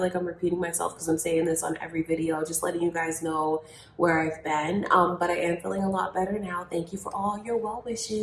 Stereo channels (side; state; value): both; identical; correlation 1.00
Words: like I'm repeating myself because I'm saying this on every video, just letting you guys know where I've been. But I am feeling a lot better now. Thank you for all your well